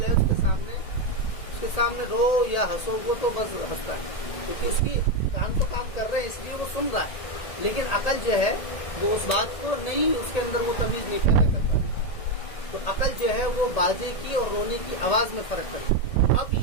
ہے اس کے سامنے رو یا ہنسو وہ تو بس ہنستا ہے، کیونکہ اس کی کان تو کام کر رہے ہیں اس لیے وہ سن رہا ہے. لیکن عقل جو ہے وہ اس بات کو نہیں، اس کے اندر وہ تمیز نہیں پیدا کر پاتی. تو عقل جو ہے وہ باجے کی اور رونے کی آواز میں فرق کرتی ہے. اب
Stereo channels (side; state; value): right; late; 1.8 ms